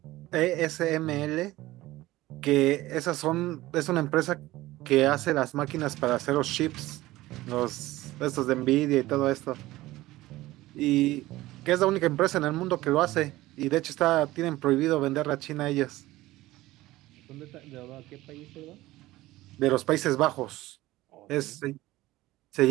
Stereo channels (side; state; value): left; quieter; 17.5 dB